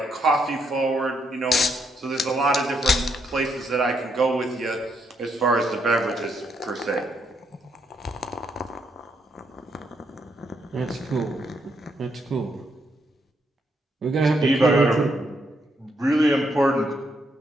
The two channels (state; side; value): normal; both; correlation 0.76